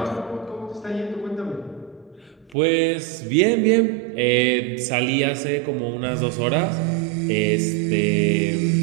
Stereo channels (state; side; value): drops out; left; at 2.6 s